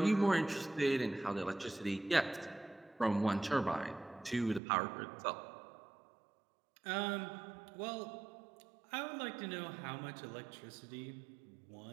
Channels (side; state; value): left; drops out; at 4.6 s